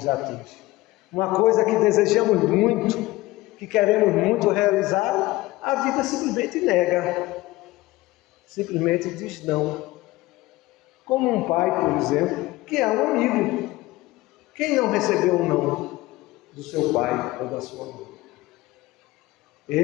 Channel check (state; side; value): quieter; right; 19.0 dB